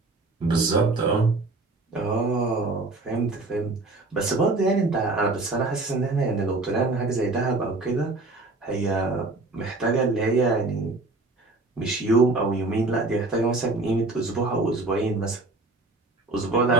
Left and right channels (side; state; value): left; quieter; 3.2 dB